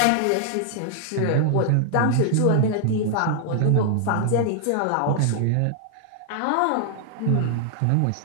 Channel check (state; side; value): different; both; correlation -0.01